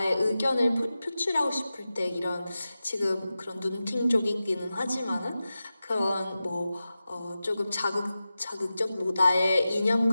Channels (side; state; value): both; inverted; correlation -0.93